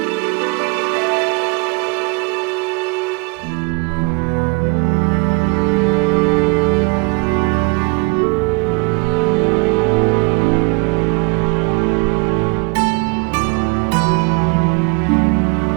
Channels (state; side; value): quieter; left; 31.2 dB